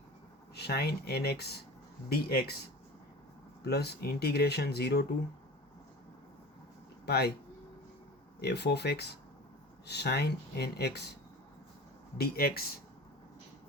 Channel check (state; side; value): normal; both; correlation 0.37